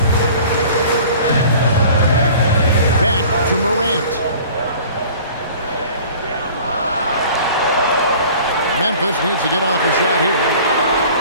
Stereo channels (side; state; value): both; inverted; correlation -0.46